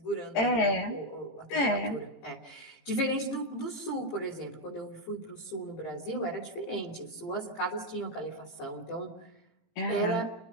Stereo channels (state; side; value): late; right; 18 ms